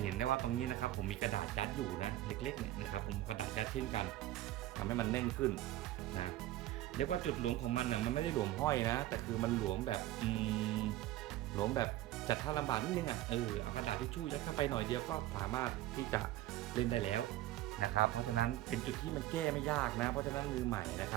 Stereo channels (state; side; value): quieter; left; 15.0 dB